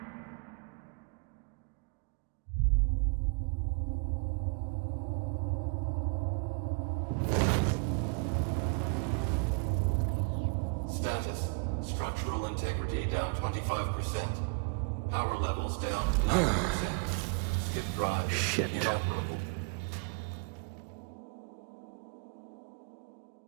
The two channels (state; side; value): quieter; left; 34.4 dB